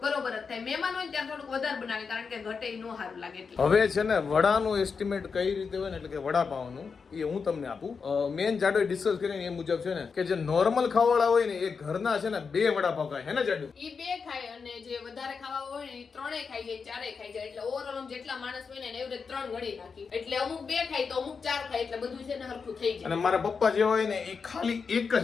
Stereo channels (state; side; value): quieter; right; 5.4 dB